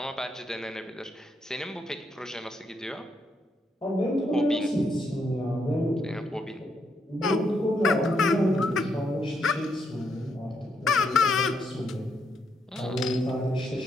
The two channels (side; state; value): both; normal; correlation 0.78